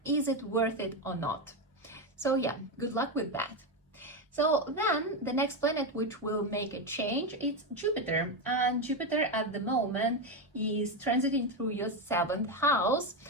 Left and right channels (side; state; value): both; normal; correlation 0.11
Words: is it worth it or not? So yeah, good luck with that. So then the next planet which will make a change, it's Jupiter. And Jupiter at the moment is transiting through your 7th house,